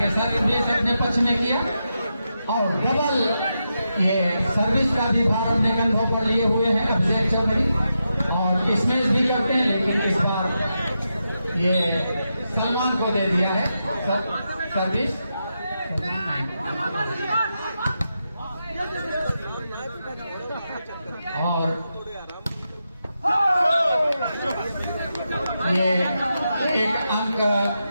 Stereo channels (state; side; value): inverted; both; correlation -0.87